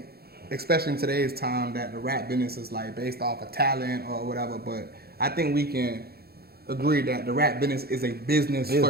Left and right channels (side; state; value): left; late; 0.46 ms